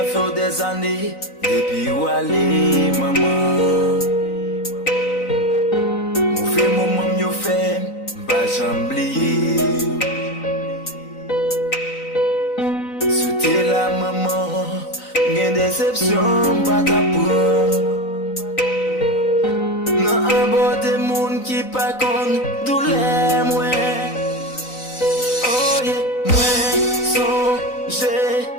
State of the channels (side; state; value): right; late; 3.9 ms